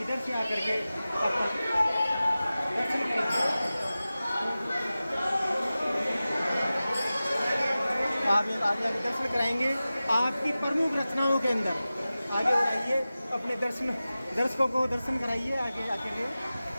से आकर के दर्शन करेंगे। आप आगे आगे दर्शन कराएंगे। आपकी प्रमुख रचनाओं के अंदर आगे बढ़ाइए, अपने दर्शकों को दर्शन कराइए। आगे आके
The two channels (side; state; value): both; inverted; correlation -0.96